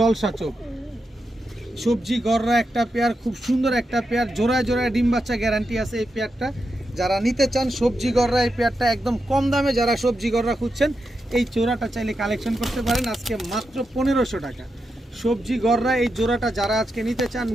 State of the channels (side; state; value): both; normal; correlation 0.87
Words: চোখ। সবজি গররা একটা পেয়ার, খুব সুন্দর একটা পেয়ার, জোড়ায় জোড়ায় ডিম বাচ্চা গ্যারান্টি আছে এই পেয়ারটা। যারা নিতে চান সবজি গররা এই পেয়ারটা একদম কম দামে, যারা সবজি গররা খুঁজছেন এই জোড়াটা চাইলে কালেকশন করতে পারেন আজকে মাত্র 1500 টাকা। সবজি গররা এই জোড়াটা যারা আজকে নিতে চান